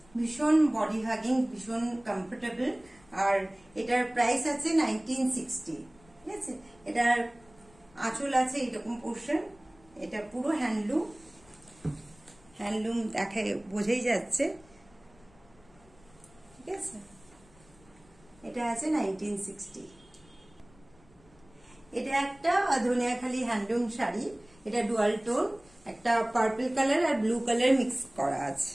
ভীষণ বডি হাগিং, ভীষণ কমফোর্টেবল। আর এটার প্রাইস আছে 1960। ঠিক আছে, এটার আঁচল আছে এরকম পোর্শন। এটা পুরো হ্যান্ডলুম দেখে বোঝাই যাচ্ছে। ঠিক আছে, এটা আছে 1960। এটা একটা ধনিয়াখালি হ্যান্ডলুম শাড়ি। এটা ডুয়াল টোন, একটা পার্পল কালার আর ব্লু কালার মিক্স করা আছে।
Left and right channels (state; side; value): noise; left; rumble, 28 dB below the sound